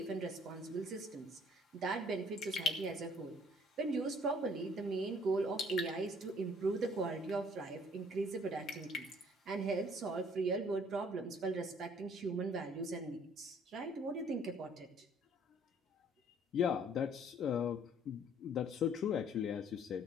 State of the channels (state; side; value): normal; both; correlation 0.59